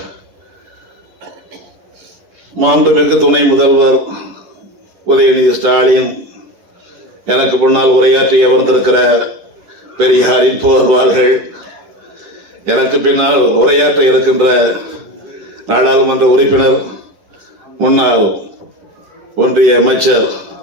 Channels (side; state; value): left; late; 10 ms